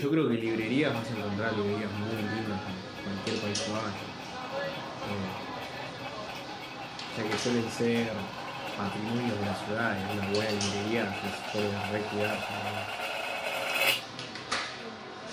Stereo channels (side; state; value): both; identical; correlation 1.00